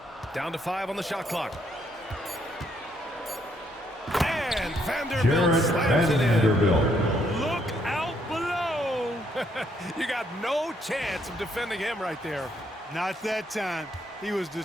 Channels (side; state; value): both; normal; correlation 0.72